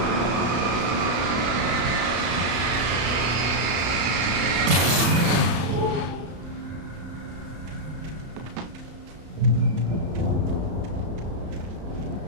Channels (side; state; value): left; late; 34 ms